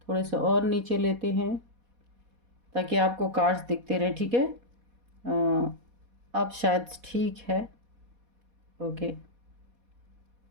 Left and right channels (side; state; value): left; late; 4.1 ms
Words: थोड़े से और नीचे लेते हैं ताकि आपको कार्ड्स दिखते रहे। ठीक है। अब शायद ठीक है। ओके,